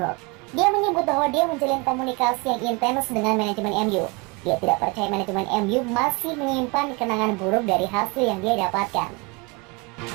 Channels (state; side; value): quieter; left; 28.1 dB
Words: Dia menyebut bahwa dia menjalin komunikasi yang intens dengan manajemen MU. Dia tidak percaya manajemen MU masih menyimpan kenangan buruk dari hasil yang dia dapatkan.